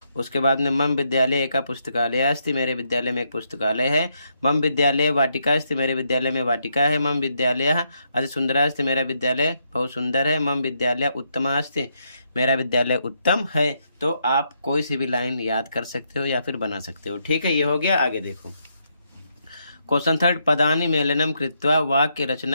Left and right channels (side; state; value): both; inverted; correlation -0.78